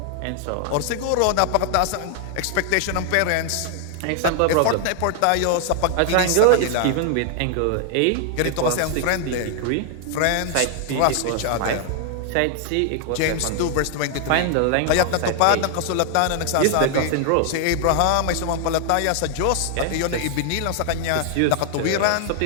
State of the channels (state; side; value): different; both; correlation 0.00